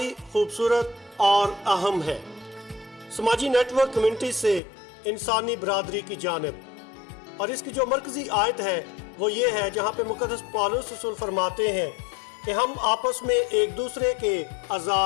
खूबसूरत और अहम है। समाजी नेटवर्क कम्युनिटी से इंसानी बरादरी की जानिब, और इसकी जो मरकजी आयत है वो ये है जहाँ पे मुक़द्दस पौलुस रसूल फरमाते हैं कि हम आपस में एक दूसरे के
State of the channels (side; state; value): right; drops out; at 4.6 s